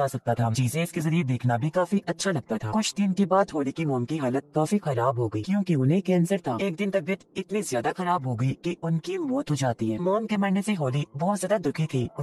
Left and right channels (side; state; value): both; identical; correlation 1.00